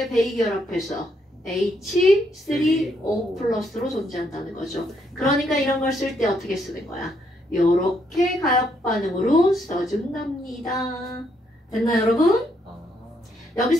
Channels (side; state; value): both; normal; correlation 0.74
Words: 배위결합해서 H3O 플러스로 존재한다는 거죠. 그러니까 이런 걸 쓸 때 어떻게 쓰는 거야? 요렇게 가역 반응으로 써준답니다. 됐나요, 여러분?